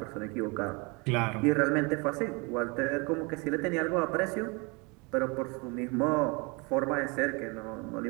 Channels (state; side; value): quieter; left; 29.3 dB